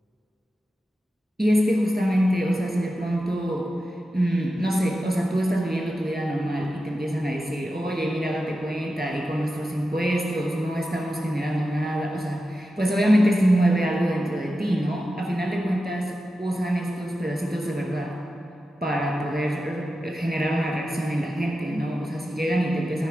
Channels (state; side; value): normal; both; correlation 0.91